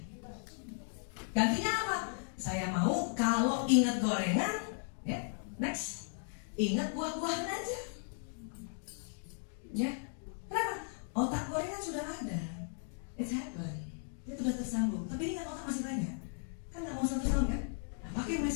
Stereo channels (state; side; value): silent; right; 54 dB below the other